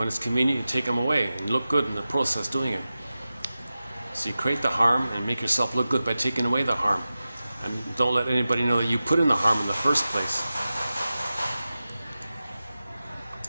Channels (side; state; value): both; inverted; correlation -0.95